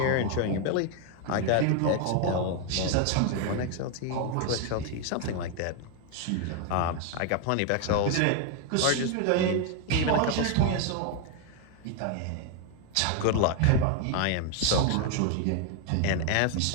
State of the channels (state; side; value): different; both; correlation 0.01